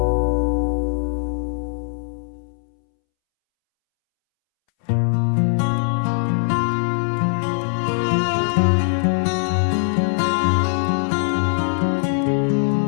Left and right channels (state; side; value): silent; right; 65 dB below the other